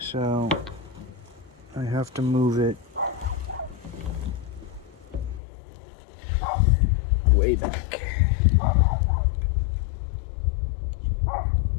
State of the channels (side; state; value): right; drops out; at 5.4 s